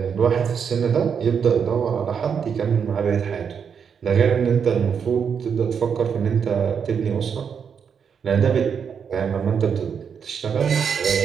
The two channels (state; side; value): quieter; left; 6.9 dB